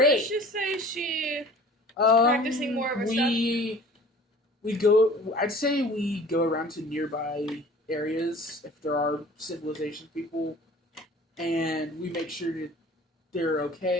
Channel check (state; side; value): normal; both; correlation 0.46